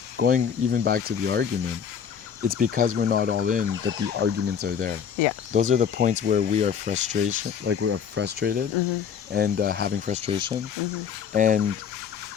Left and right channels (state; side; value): quieter; right; 7.6 dB